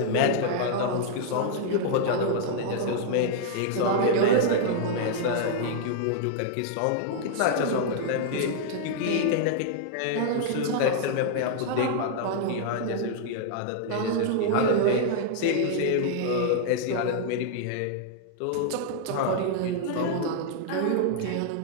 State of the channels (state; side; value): different; both; correlation -0.01